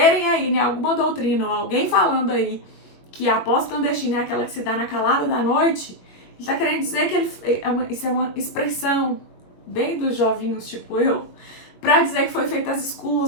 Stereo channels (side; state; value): right; late; 21 ms